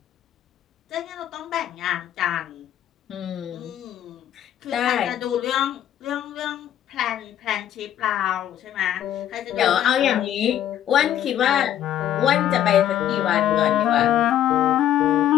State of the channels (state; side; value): quieter; right; 11.1 dB